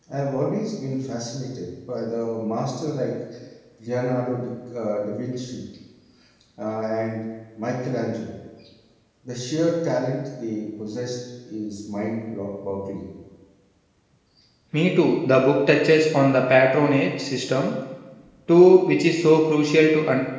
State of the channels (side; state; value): both; identical; correlation 1.00